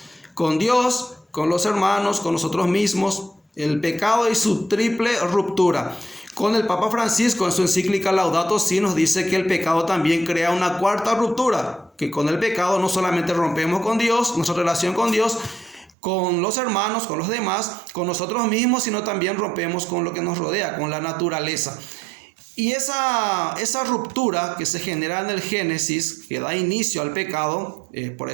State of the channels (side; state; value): left; drops out; at 15.9 s